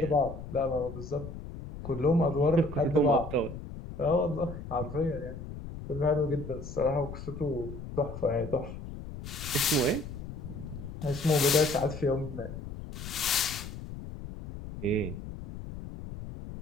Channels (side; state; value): left; noise; rumble, 10 dB below the sound